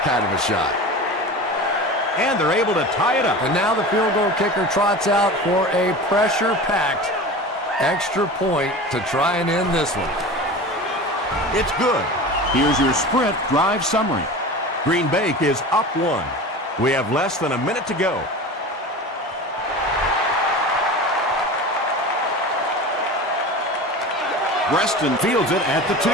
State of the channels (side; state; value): both; normal; correlation 0.33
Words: kind of a shot. And they're able to tie it up. And now the field goal kicker trots out for a pressure-packed extra point to try and end this one. It's good. Here's your Sprint drive summary. Green Bay is up 1. We have less than a minute to go. Reston fields it at the 2.